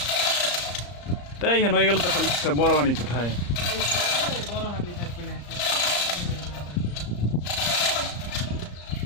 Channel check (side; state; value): right; late; 34 ms